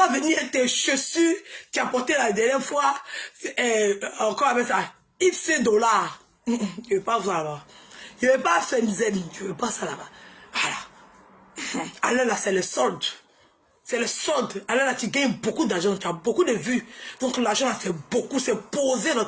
venir tes chaussures, tu as porté la dernière fois, encore avec ça, X dollars. Je veux pas ça là-bas. Je veux pas Fenzen, je veux pas ça là-bas. Voilà. Allez là, c'est le solde. C'est le solde. Alors là, tu gagnes beaucoup d'argent, tu as beaucoup de vues. Donc l'argent, c'est beaucoup, c'est posé dans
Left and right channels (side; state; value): both; identical; correlation 1.00